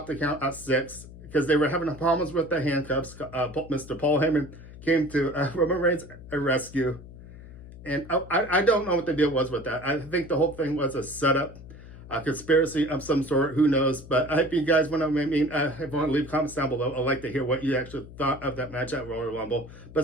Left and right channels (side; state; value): left; noise; hum, 16 dB below the sound